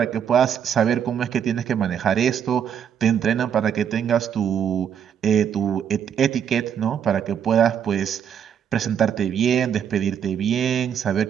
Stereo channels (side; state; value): left; quieter; 8.4 dB